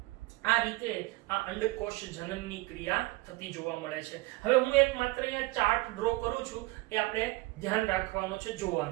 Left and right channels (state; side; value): quieter; left; 21.4 dB